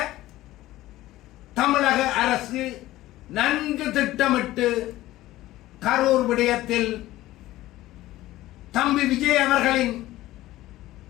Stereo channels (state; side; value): quieter; right; 16.2 dB